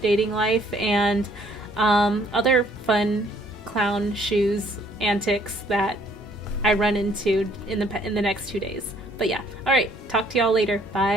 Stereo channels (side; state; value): both; normal; correlation 0.62